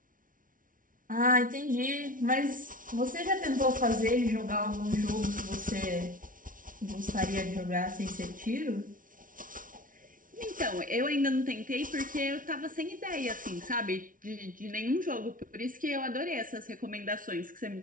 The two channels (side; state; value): left; late; 0.39 ms